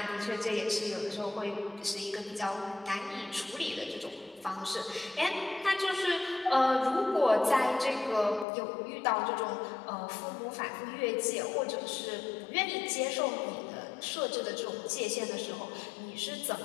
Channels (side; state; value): right; drops out; at 8.5 s